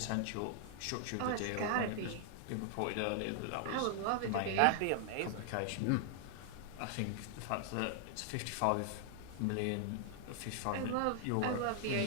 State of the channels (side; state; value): both; different; correlation 0.00